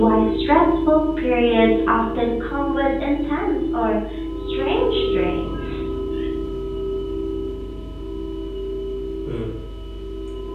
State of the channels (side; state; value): both; identical; correlation 1.00